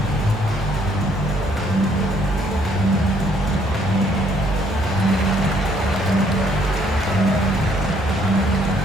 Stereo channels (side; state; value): both; normal; correlation 0.66